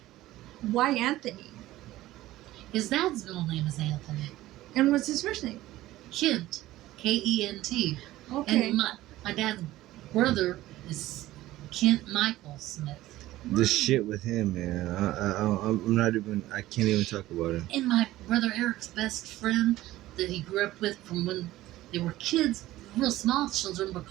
why Anthony? His dad's middle name is Anthony. And what's his first name? Kent. K-E-N-T. Okay. And my dad's brother is Kent Michael Smith. The shit with him, man. I'm not even. I can't even talk about him. And my brother Eric's best friend that he grew up with from when they were kids, real small children,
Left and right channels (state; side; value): quieter; left; 16.0 dB